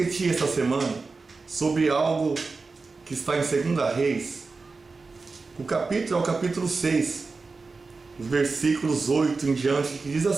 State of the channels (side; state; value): left; quieter; 4.1 dB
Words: essa semana sobre algo que está em 2 Reis. O capítulo é o capítulo 6, os versículos 8 em diante, que diz